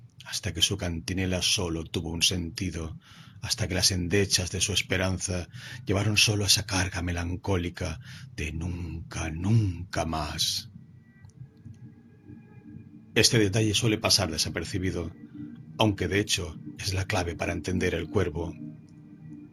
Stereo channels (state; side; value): identical; both; correlation 1.00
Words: hasta que su cantinela solo tuvo un sentido, hasta que las endechas de su esperanza llevaron solo esa carga melancólica de nunca, nunca más. Este detalle suele pasar desapercibido, aunque de hecho es la clave para entender el cuervo.